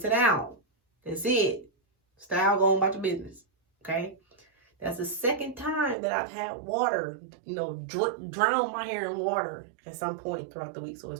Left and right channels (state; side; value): drops out; left; at 6.0 s